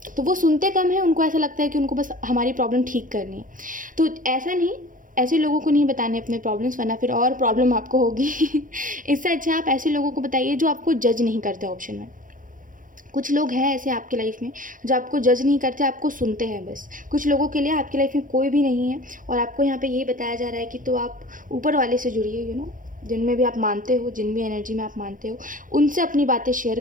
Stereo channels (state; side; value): late; left; 0.39 ms